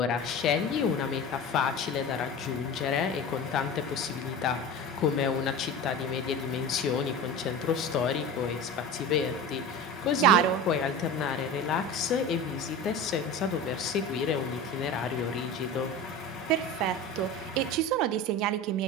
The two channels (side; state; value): both; normal; correlation 0.31